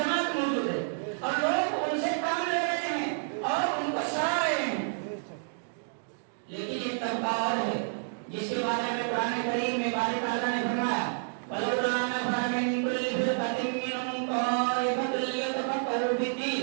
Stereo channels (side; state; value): left; silent; digital silence